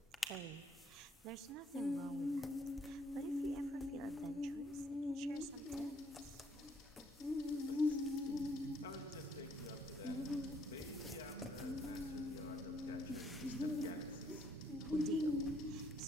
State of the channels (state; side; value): normal; both; correlation 0.67